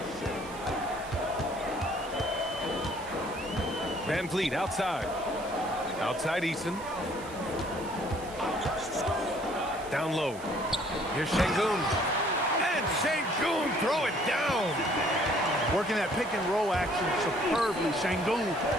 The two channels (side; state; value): right; noise; hiss, 18 dB below the sound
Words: Van Vliet outside. Outside Eason. Down low. Here's Şengün. And Şengün throw it down. Working that pick and roll action superbly. Şengün